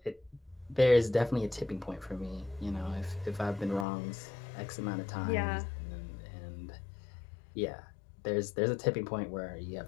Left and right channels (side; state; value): right; drops out; at 3.9 s